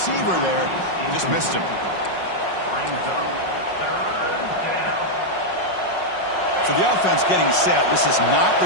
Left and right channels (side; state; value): right; late; 5.5 ms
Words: there. Just missed him. So the offense getting set. This is not where